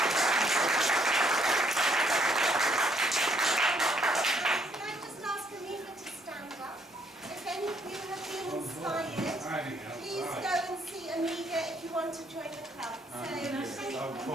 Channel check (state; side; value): normal; both; correlation 0.68